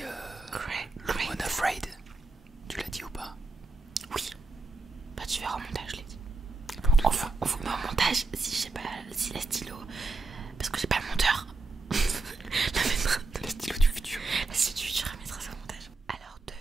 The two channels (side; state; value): left; quieter; 3.5 dB